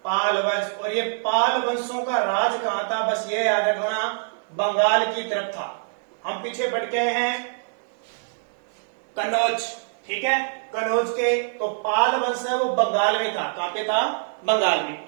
पाल वंश। और ये पाल वंशों का राज कहां था, बस ये याद रखना, बंगाल की तरफ था। हम पीछे बढ़ गए हैं कन्नौज, ठीक है, कन्नौज के। तो पाल वंश है वो बंगाल में था। कहां पे था? बंगाल में।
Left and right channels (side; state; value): left; silent; digital silence